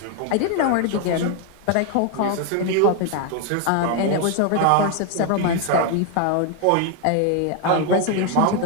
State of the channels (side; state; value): both; different; correlation 0.01